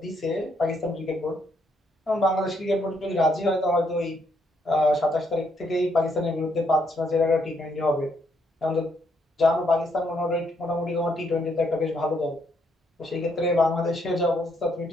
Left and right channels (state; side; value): normal; both; correlation 0.73